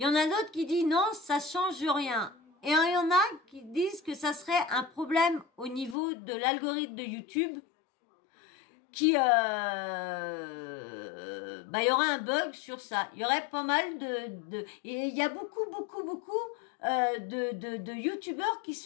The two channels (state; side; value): drops out; right; at 6.0 s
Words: y en a d'autres qui disent non, ça change rien. Et il y en a qui disent que ça serait un problème au niveau de l'algorithme de YouTube. Il y aurait un bug sur ça. Il y aurait pas mal et il y a beaucoup de youtubeurs qui